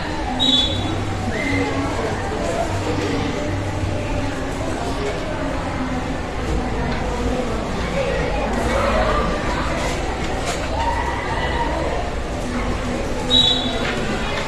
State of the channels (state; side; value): identical; both; correlation 1.00